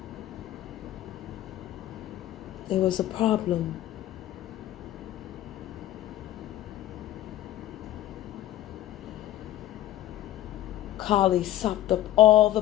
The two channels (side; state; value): right; quieter; 13.8 dB